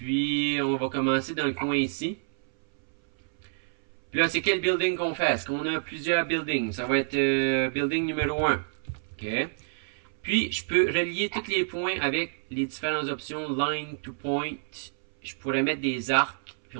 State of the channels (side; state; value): left; silent; 59 dB below the other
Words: on va commencer dans le coin ici. Puis là, c'est quel building qu'on fait? Est-ce qu'on a plusieurs buildings? Ça va être building numéro 1. OK. Puis, je peux relier tous les points avec les différentes options Line to Point. Je pourrais mettre des arcs. Puis,